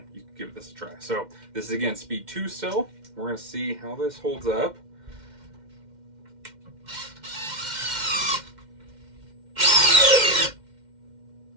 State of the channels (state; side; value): late; left; 2.1 ms